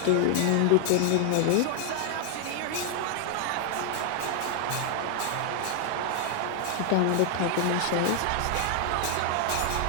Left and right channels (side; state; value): both; different; correlation 0.00